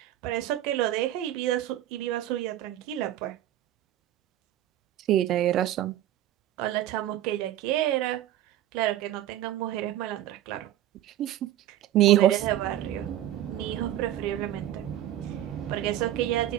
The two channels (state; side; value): quieter; left; 12.9 dB